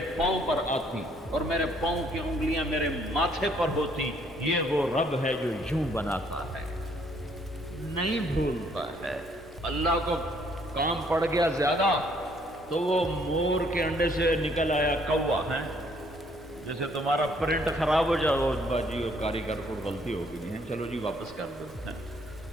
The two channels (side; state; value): both; normal; correlation 0.65